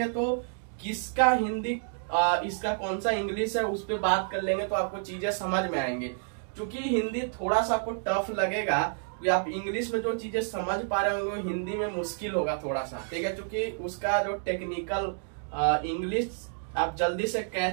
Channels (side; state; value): left; silent; digital silence